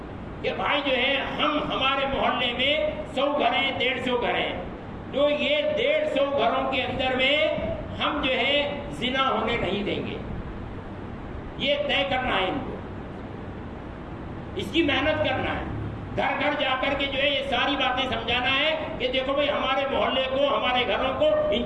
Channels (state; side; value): identical; both; correlation 1.00